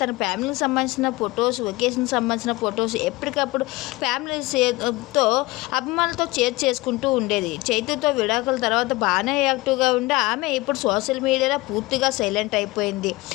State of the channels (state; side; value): quieter; right; 21.3 dB